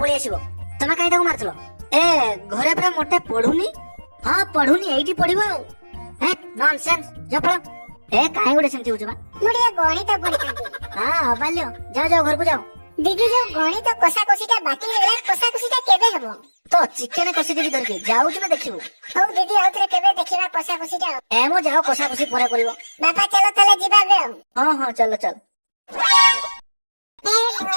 पळी आसीबो तमे काई ताको मारथलो ए घरे पूरा मोटे पढुनी ହଁ ପଢୁନି ଏଇଠି ପଢିବ ଆଉ ହେ ନନସେନ୍ସ ଜଫଳ ଏ କାହିଁ ଗୋଟେ ସେମିତି ହଉଛୁ ବା ମୁଁ ଟିକେ ଗଣିତ ପଢିଥାନ୍ତି। ହଁ ଅବାଲ୍ୟ ଯାଅ ଯାଅ ଘରକୁ ଯାଅ ଦିଦି ଯୋଉ ଗଣିତ କଷାକଷିଟା ବାକି ହେଇଗଲା କଷାକଷିଟା କେବେ ହବ? ତ ଚିକେନ କଷି ଦେବି ଧରିକି ଯାଉଛୁ ନା ଦେଖିବୁ ହଉ ଦିଦି ଆଉଥରେ କେବେ ଦେଖିବା କଷାକଷିଟା ଆଉ। ଏ ମୋ ଯାଅ କଷା କଷି ପରେ କରିବ ବାପା ଚାଲ ତାହେଲେ ଯିବା ଏବେ ଆଉ। ହଁ ହଁ ଚାଲ ଚାଲ ହେ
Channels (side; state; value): both; inverted; correlation -1.00